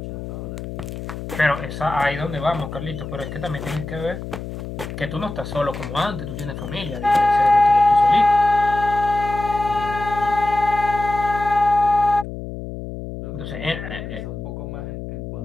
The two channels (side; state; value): left; noise; hum, 8 dB below the sound